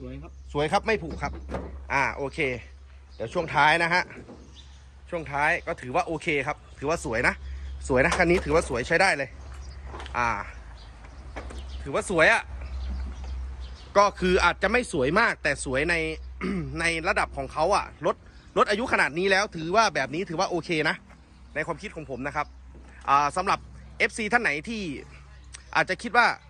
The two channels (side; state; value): both; identical; correlation 1.00